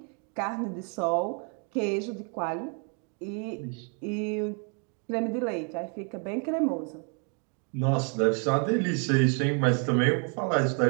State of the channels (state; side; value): quieter; left; 39.7 dB